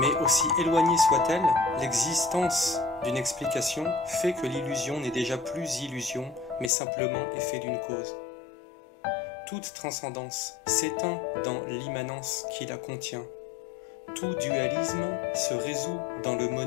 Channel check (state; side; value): drops out; right; at 6.7 s